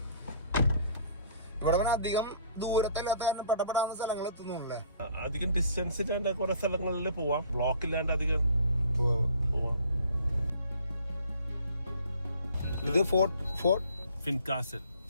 ഇവിടെ അധികം ദൂരത്തല്ലാത്ത പെട്ടപ്പെടാവുന്ന സ്ഥലങ്ങൾ എത്തുന്നുണ്ടല്ലേ. അധികം ഡിസ്റ്റൻസ് ഇല്ലാണ്ട് കുറെ സ്ഥലങ്ങളിൽ പോവാം. ബ്ലോക്ക് ഇല്ലാണ്ട് അധികം പോവാം. ഇത്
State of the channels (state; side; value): inverted; both; correlation -0.53